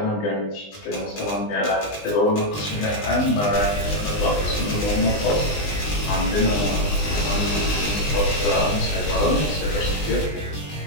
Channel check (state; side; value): late; right; 20 ms